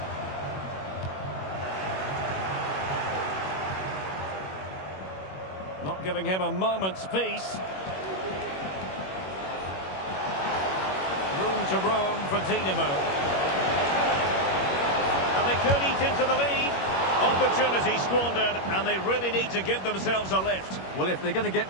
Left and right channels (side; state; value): right; late; 21 ms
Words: Not giving him a moment's peace. Room to roam for Dinamo. And they could eat into the lead. Opportunity squandered, and they really need to give themselves a lift. Well, if they're going to